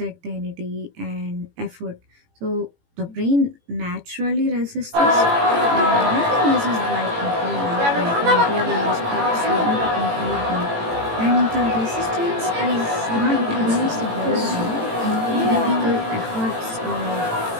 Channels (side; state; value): left; late; 18 ms